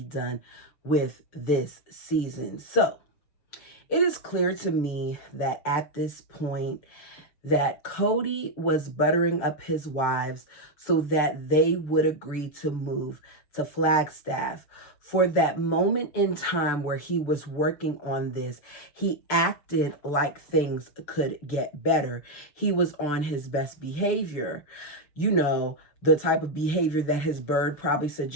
done with this season. So, it is clear to me that at this point, that Kody was buttering up his wives so that they would agree to move to Flagstaff. For that moment in time where he was working on this, he acted like things could get better. He was on his best behavior. You know, the type of behavior that his bird probably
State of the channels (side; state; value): right; late; 6.8 ms